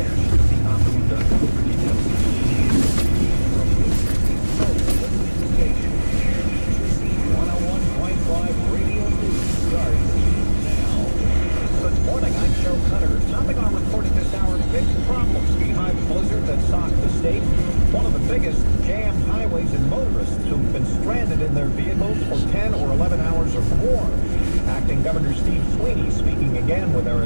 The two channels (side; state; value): both; inverted; correlation -1.00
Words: See optimum.com for details. From New Jersey, the station. 101.5 Radio News starts now. Good morning, I'm Joe Cutter. Topping our report at this hour, big problems behind the blizzard that socked the state. One of the biggest jammed highways and motorists who've been stranded in their vehicles for 10 or 11 hours or more. Acting Governor Steve Sweeney speaking again with